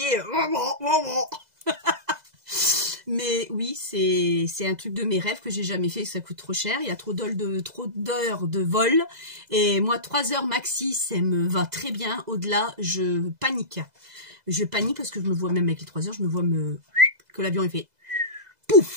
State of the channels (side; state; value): left; late; 2.0 ms